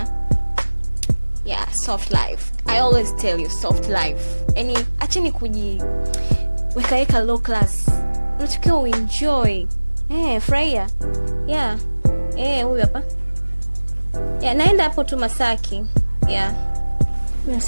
Yeah, soft life. I always tell you soft life. Yaani acheni weka low class. Unatakiwa uenjoy. Furahia. Yeah. Huyu hapa. Yeah, naenda hapo tu Masaki. Yeah.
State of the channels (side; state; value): both; inverted; correlation -1.00